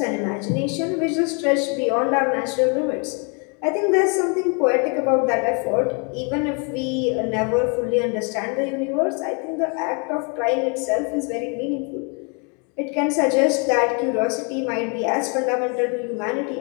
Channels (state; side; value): quieter; right; 35.9 dB